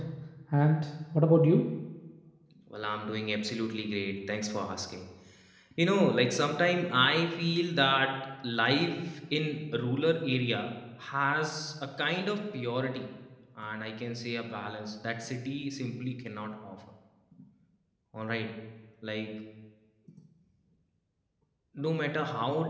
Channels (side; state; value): both; identical; correlation 1.00